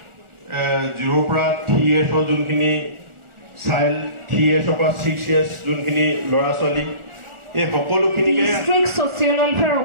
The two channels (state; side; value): late; left; 1.4 ms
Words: 0 পৰা 3 years যোনখিনি চাইল্ড 3 years পৰা 6 years যোনখিনি ল'ৰা ছোৱালী এই সকলোখিনিকে ডিস্ট্ৰিক্ট ছ'চিয়েল ৱেলফেয়াৰ